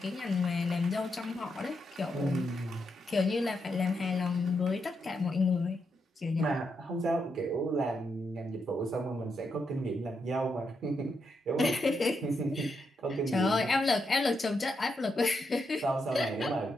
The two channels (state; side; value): normal; both; correlation 0.82